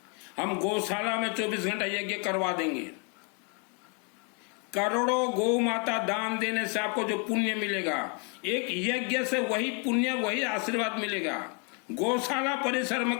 हम गौशाला में 24 घंटा यज्ञ करवा देंगे। करोड़ों गौ माता दान देने से आपको जो पुण्य मिलेगा, एक यज्ञ से वही पुण्य, वही आशीर्वाद मिलेगा। गौशाला परिसर में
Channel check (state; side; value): quieter; right; 36.7 dB